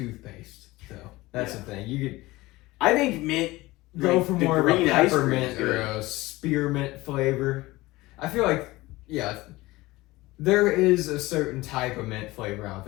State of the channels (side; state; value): right; quieter; 19.8 dB